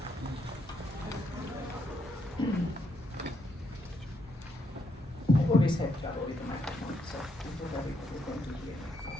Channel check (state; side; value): normal; both; correlation 0.76